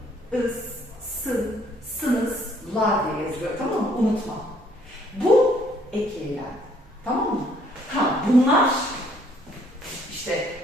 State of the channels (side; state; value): both; normal; correlation 0.64